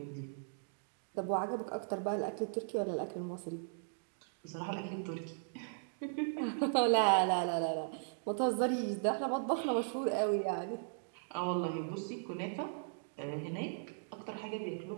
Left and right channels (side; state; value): left; silent; digital silence